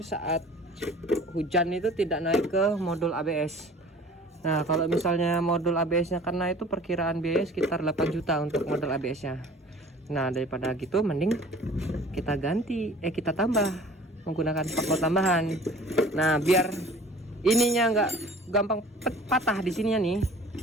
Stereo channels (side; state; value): both; normal; correlation 0.47